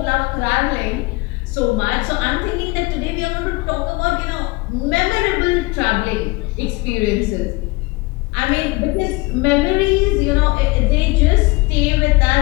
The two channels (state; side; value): quieter; right; 23.3 dB